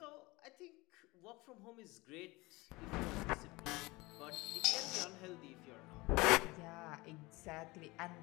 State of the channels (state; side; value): quieter; right; 22.7 dB